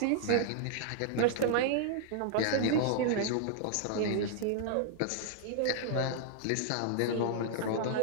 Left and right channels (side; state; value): both; different; correlation -0.01